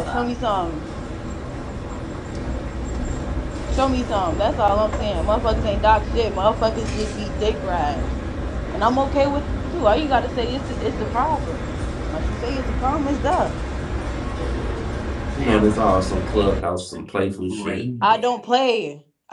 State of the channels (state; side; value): identical; both; correlation 1.00